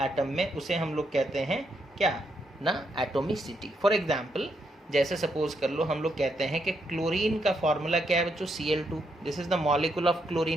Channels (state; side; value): normal; both; correlation 0.78